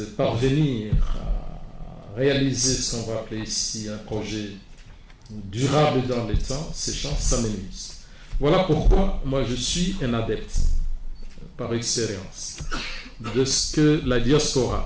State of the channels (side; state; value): both; identical; correlation 1.00